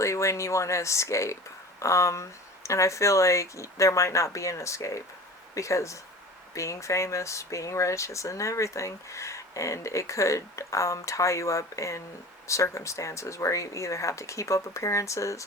when you want to escape, and I feel like there might not be an escape, because being famous, being rich isn't everything, and it could tie you up in circumstances where you either have to keep up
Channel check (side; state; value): both; normal; correlation 0.38